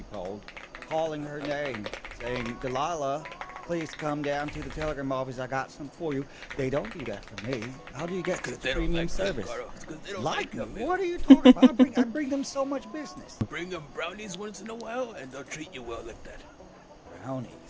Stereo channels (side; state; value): both; identical; correlation 1.00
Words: calling her name, saying, Delilah, please come down to the telegram office. I got some for you. They don't do that for me. How do you get Because this they don't premium like service? Because they don't Like like me? them. What are you talking about? I bring them so much business. Bring them brownies once in a while and they'll treat you well like that. Brownies.